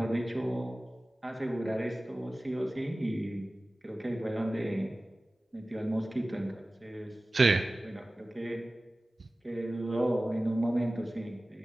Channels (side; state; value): both; normal; correlation 0.97